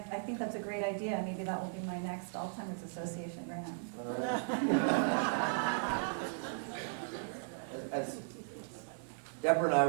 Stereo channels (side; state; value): left; silent; digital silence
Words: think that's a great idea. Maybe that will be my next Alzheimer's Association grant. As Deborah and I